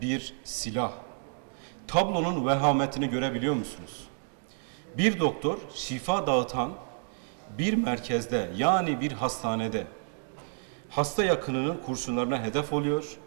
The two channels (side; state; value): left; silent; 58 dB below the other